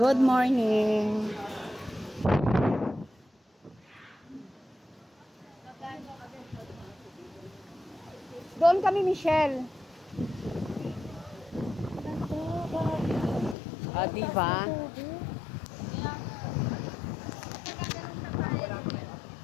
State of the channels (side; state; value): right; drops out; at 13.6 s